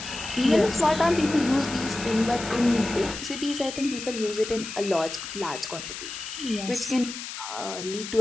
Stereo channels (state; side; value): noise; left; hiss, 9 dB below the sound